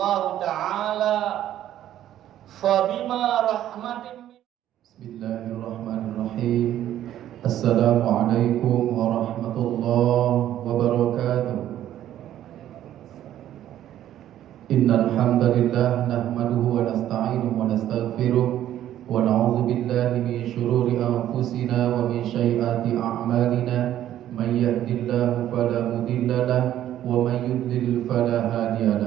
تعالى فبما رحمة بسم الله الرحمن الرحيم السلام عليكم ورحمة الله وبركاته إن الحمد لله نحمده ونستعينه ونستغفره ونعوذ بالله من شرور أنفسنا ومن سيئات أعمالنا من يهد الله فلا مضل له ومن يضلل فلا هادي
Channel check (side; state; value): left; quieter; 12.0 dB